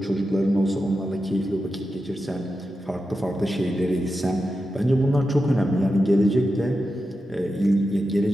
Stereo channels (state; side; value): normal; both; correlation 0.90